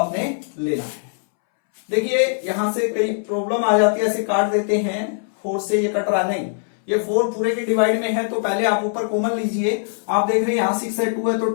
लेना है। देखिए यहां से कई प्रॉब्लम आ जाती है, ऐसे काट देते हैं, 4 से ये कट रहा नहीं, ये 4 पूरे के डिवाइड में है, तो पहले आप ऊपर कॉमन लीजिए। आप देख रहे हैं यहां 6 है, 2 है, तो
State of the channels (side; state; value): right; silent; 64 dB below the other